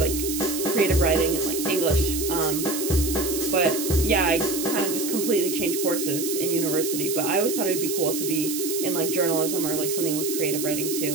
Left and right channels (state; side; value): noise; right; hiss, 5 dB below the sound